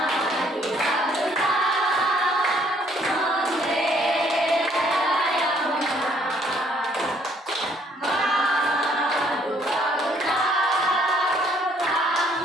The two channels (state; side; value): normal; both; correlation 0.64